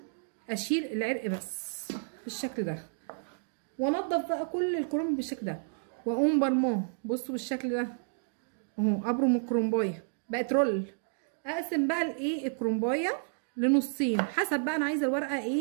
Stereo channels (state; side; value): silent; left; digital silence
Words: اشيل العرق بس بالشكل ده، وانضف بقى كل الكرنب بالشكل ده، واقوم برماه. بصوا بالشكل ده اهو، ابرم الكرنبايه بقت رول. اقسم بقى الايه الكرنبايه لنصين حسب بقى انا عايزه الورقه